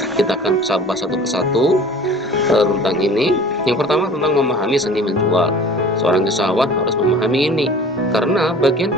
Kita akan bahas satu persatu tentang ini. Yang pertama tentang memahami seni menjual. Seorang usahawan harus memahami ini, karena bagian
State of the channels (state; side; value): normal; both; correlation 0.44